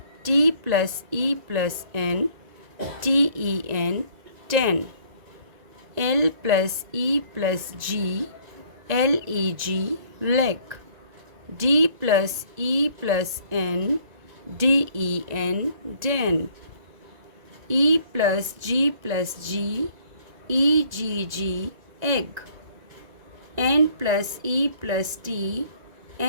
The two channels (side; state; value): left; late; 1.9 ms